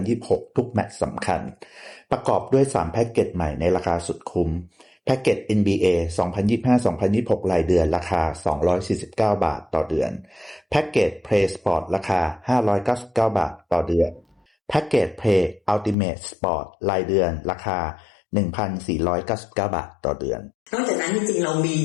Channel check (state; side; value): drops out; right; at 16.0 s